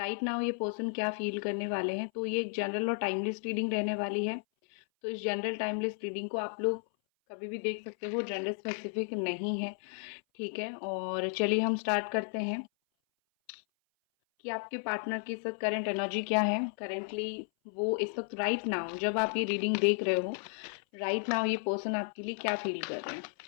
नाउ ये पर्सन क्या फील करने वाले हैं। तो ये एक जनरल और टाइमलेस रीडिंग रहने वाली है। तो इस जनरल टाइमलेस रीडिंग को आप लोग कभी भी देख सकते हो, जेंडर स्पेसिफिक नहीं है। ठीक है, और चलिए हम स्टार्ट करते हैं कि आपके पार्टनर की इस वक्त करंट एनर्जी क्या है। करेंटली वो इस वक्त राइट नाउ जब आप ये रीडिंग देख रहे हो, राइट नाउ ये पर्सन आपके लिए क्या फील कर रहे हैं।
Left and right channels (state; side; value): silent; right; 56 dB below the other